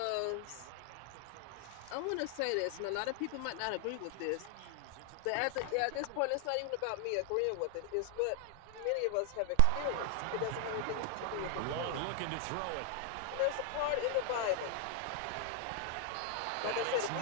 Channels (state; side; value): different; both; correlation 0.00